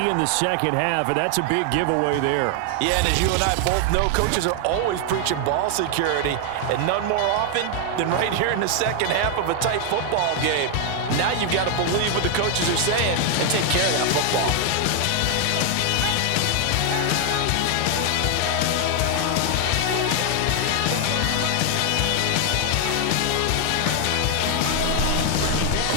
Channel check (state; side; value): different; both; correlation 0.00